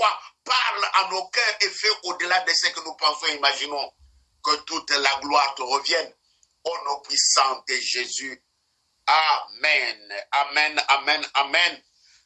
parle à nos cœurs et fais au-delà de ce que nous pensons et imaginons. Que toute la gloire te revienne. Au nom puissant de Jésus. Amen. Amen, amen, amen.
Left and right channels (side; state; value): both; identical; correlation 1.00